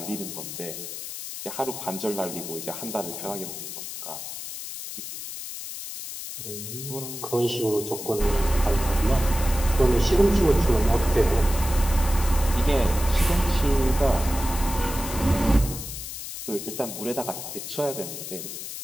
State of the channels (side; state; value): left; noise; hiss, 9 dB below the sound